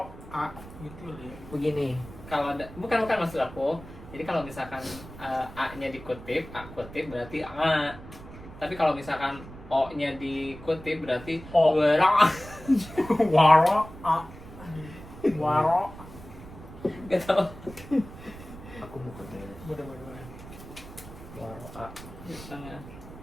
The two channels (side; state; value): right; noise; rumble, 16 dB below the sound